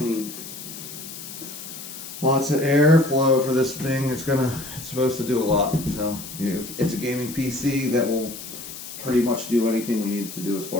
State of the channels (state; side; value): noise; left; hiss, 11 dB below the sound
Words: Lots of airflow for this thing. It's supposed to do a lot. So it's a gaming PC that will pretty much do anything we need it to do as